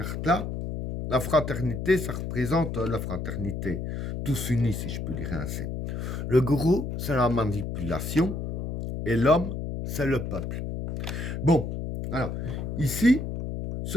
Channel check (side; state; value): left; noise; hum, 4 dB below the sound